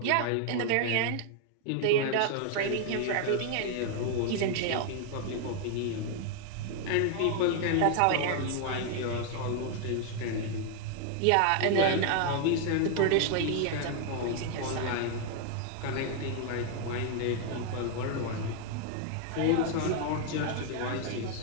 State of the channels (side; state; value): both; different; correlation 0.00